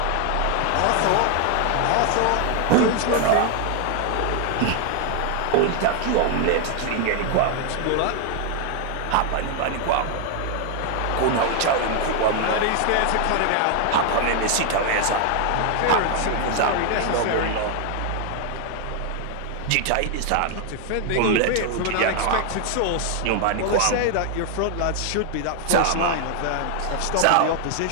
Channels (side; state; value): both; different; correlation 0.00